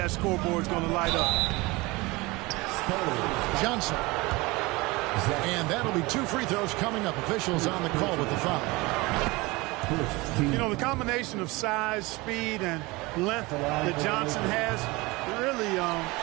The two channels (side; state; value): left; quieter; 23.0 dB